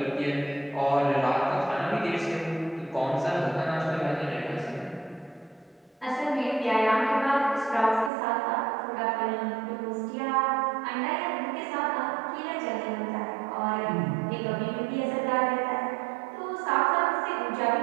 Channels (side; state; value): left; drops out; at 8.1 s